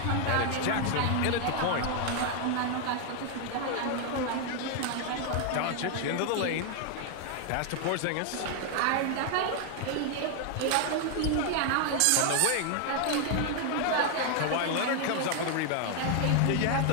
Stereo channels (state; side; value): different; both; correlation 0.00